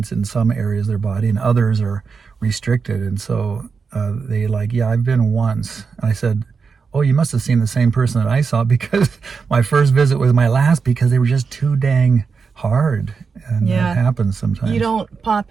in some areas of their body and others are restricted. And so they like, yeah, I've been once. And I said, oh, you must have seen the same person that I saw, because my first visit was my last because they were just too dang hard. And that happens sometimes. You don't pop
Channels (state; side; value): quieter; left; 5.3 dB